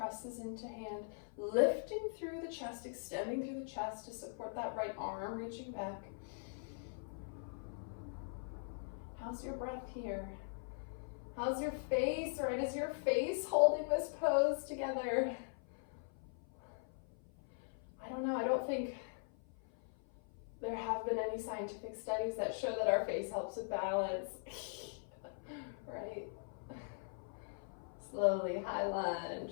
into hand, lifting through the chest, extending through the chest to support that right arm, reaching back. How's your breath here? How's your face, right? Is your face holding this pose together? I don't know, I don't think there have been any scientific studies that show that our face helps with balance, right? Slowly, high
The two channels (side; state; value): right; silent; 50 dB below the other